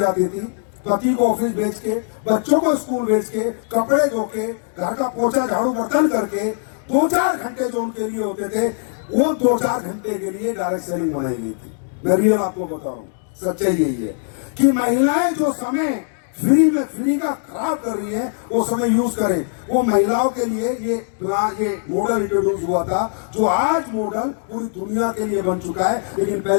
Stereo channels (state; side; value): silent; right; digital silence